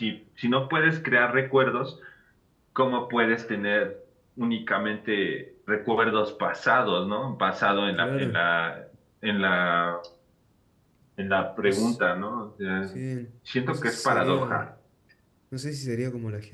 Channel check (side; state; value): both; identical; correlation 1.00